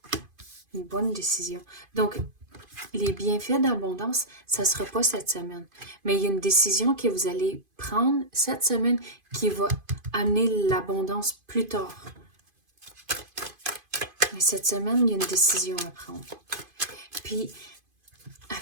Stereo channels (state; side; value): late; left; 2.5 ms